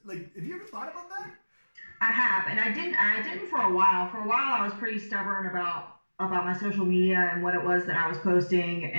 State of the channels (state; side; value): inverted; both; correlation -1.00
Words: like? Have you ever thought about that? I have, and I didn't for a while. For a while, I was pretty stubborn about my social media and what it was that I was posting,